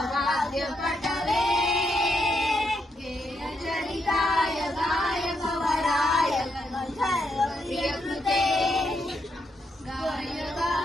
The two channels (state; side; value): normal; both; correlation 0.79